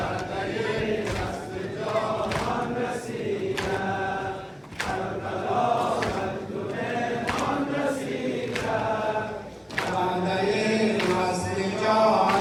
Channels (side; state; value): both; identical; correlation 1.00